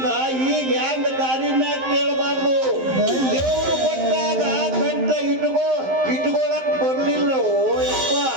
ಈಗ ಹೆಂಗ ದಾರಿ ಮ್ಯಾಗ ಕೇಳಬಾರ್ದು. ದೇವ್ರು ಕೊಟ್ಟಾಗ ಕಂಠ ಇಟ್ಕೊಳಕ್ ಬರ್ಲಿಲ್ಲ. ಯಪ್ಪ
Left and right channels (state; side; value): late; left; 11 ms